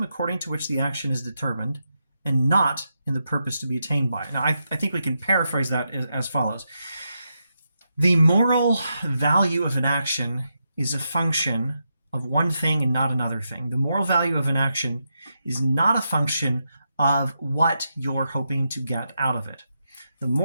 according to which the action is determined, and not in the purpose to be attained by. Now I think we can paraphrase that as follows. The moral value of an action is a function of one thing and not another thing. The moral value of an action is not a function of what you're hoping to get out of it. The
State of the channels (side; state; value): both; inverted; correlation -0.85